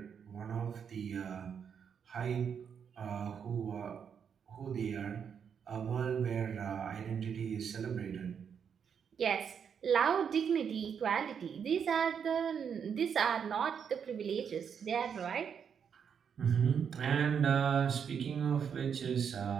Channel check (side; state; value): left; quieter; 7.3 dB